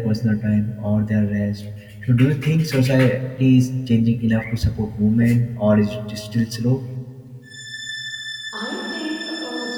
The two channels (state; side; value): identical; both; correlation 1.00